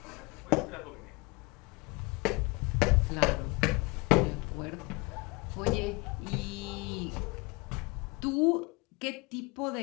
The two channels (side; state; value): right; quieter; 25.7 dB